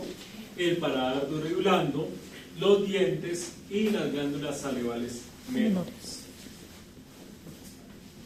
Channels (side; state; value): both; identical; correlation 1.00